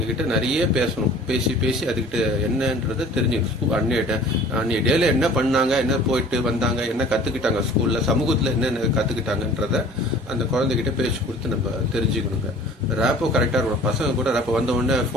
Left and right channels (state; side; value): normal; both; correlation 0.47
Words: நிறைய பேசணும். பேசி அதுக்கிட்ட என்னன்றதை தெரிஞ்சுக்கணும். அன்னைய டேல என்ன பண்ணாங்க, என்ன போயிட்டு வந்தாங்க, என்ன கற்றுக்கிட்டாங்க ஸ்கூலில், சமூகத்தில் என்னென்ன கற்றுக்கிட்டாங்கன்றத அந்த குழந்தைகிட்ட பேச்சு கொடுத்து நம்ம தெரிஞ்சுக்கணுங்க. ரேப்போ கரெக்டாக இருக்கணும். பசங்க கூட ரேப்போ வந்த உடனே